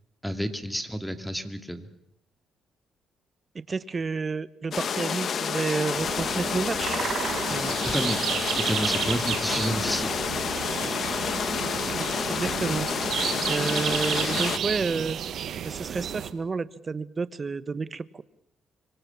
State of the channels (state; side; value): normal; both; correlation 0.77